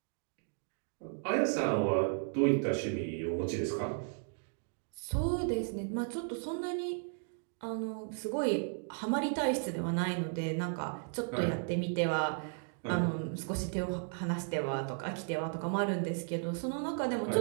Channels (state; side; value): silent; left; 55 dB below the other